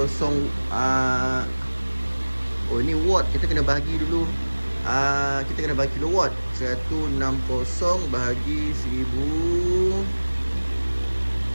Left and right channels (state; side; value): inverted; both; correlation -1.00